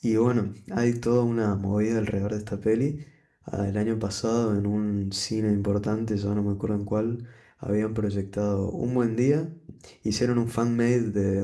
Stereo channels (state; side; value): identical; both; correlation 1.00